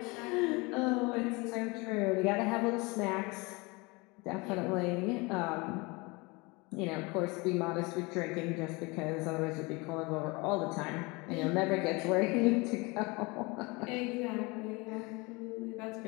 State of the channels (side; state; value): right; quieter; 26.1 dB